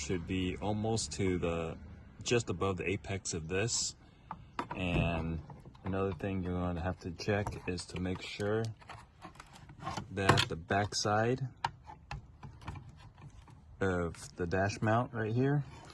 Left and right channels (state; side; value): identical; both; correlation 1.00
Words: be almost to the just above the apex of this. And another thing you're going to have to check is to make sure that the back side of the dash mount right here